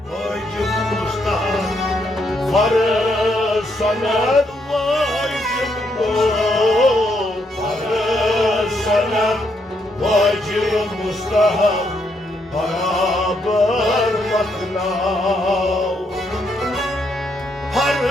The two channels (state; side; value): normal; both; correlation 0.76